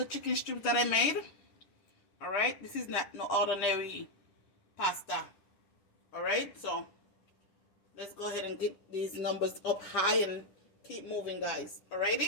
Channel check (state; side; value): late; right; 10 ms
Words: chicken strips that I made. Alright? This is not no ordinary pasta. Alright? So let's go ahead and get these numbers up high and keep moving, guys.